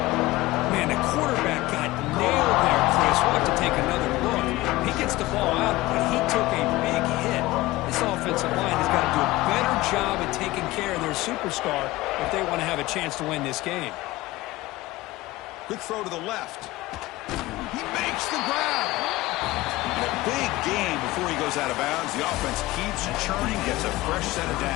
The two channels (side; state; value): right; quieter; 18.8 dB